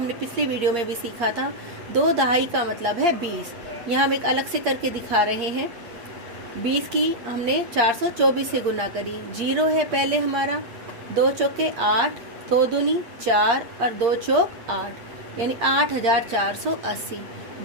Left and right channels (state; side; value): late; left; 8.5 ms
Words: पिछले वीडियो में भी सीखा था। 2 दहाई का मतलब है 20। यहाँ हम एक अलग से करके दिखा रहे हैं। 20 की हमने 424 से गुना करी, 0 है पहले हमारा। 2 चौके 8, 2 दूनी 4 और 2 चौक 8 यानी 8480।